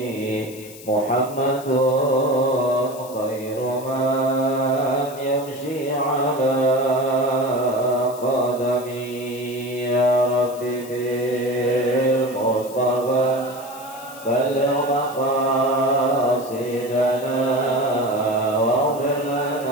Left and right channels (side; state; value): left; noise; hiss, 18 dB below the sound